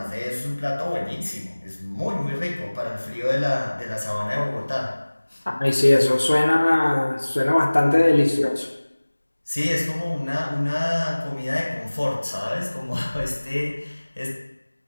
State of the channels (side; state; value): both; inverted; correlation -1.00